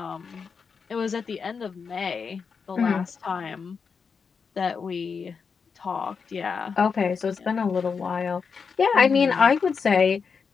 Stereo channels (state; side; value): quieter; right; 5.7 dB